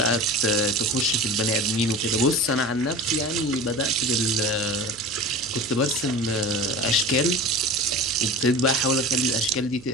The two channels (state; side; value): noise; right; hum, 23 dB below the sound